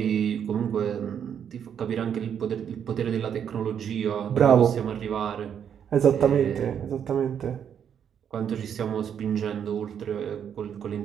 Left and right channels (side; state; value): left; quieter; 8.4 dB